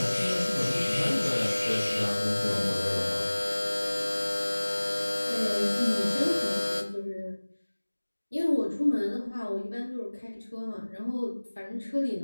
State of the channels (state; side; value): inverted; both; correlation -1.00